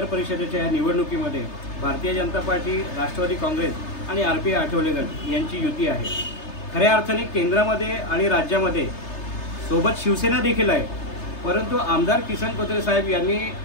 परिषदेच्या या निवडणुकीमध्ये भारतीय जनता पार्टी, राष्ट्रवादी काँग्रेस आणि RP आठवले गट यांची युती आहे. खऱ्या अर्थाने केंद्रामध्ये आणि राज्यामध्ये सोबत शिवसेना देखील आहे. परंतु आमदार किसन कथोरे साहेब यांनी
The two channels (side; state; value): right; late; 3.3 ms